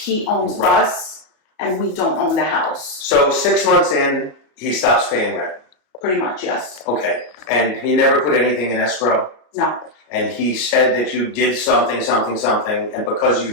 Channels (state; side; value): late; right; 33 ms